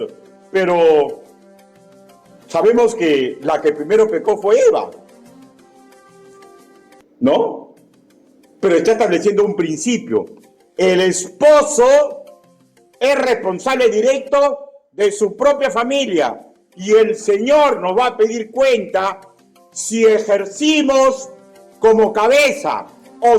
Pero sabemos que la que primero pecó fue Eva, ¿no? Pero está estableciendo un principio. El esposo es responsable directo de su propia familia y el Señor nos va a pedir cuenta si ejercimos como cabeza o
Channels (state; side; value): identical; both; correlation 1.00